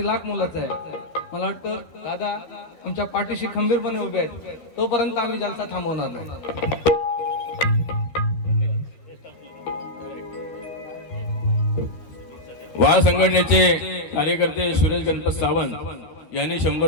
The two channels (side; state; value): right; late; 12 ms